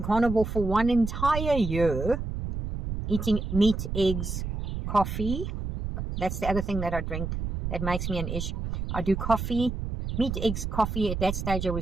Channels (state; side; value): noise; right; rumble, 4 dB below the sound